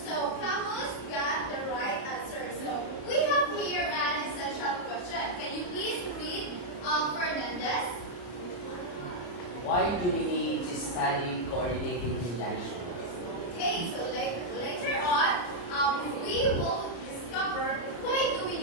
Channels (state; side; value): late; right; 34 ms